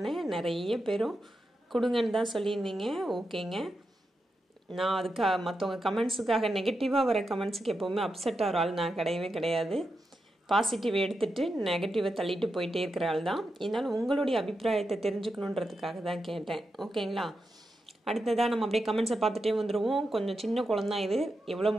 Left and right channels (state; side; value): normal; both; correlation 0.87